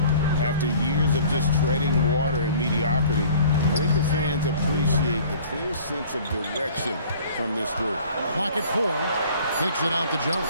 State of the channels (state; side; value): inverted; both; correlation -0.50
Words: after years of just treading water and mediocrity, I think the fans appreciate the clear sense of direction from this group. Clock at 4. Kicks it out to Jones.